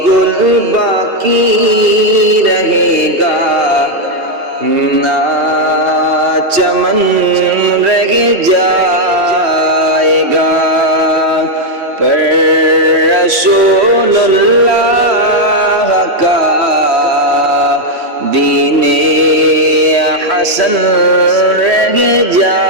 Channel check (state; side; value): late; left; 3.1 ms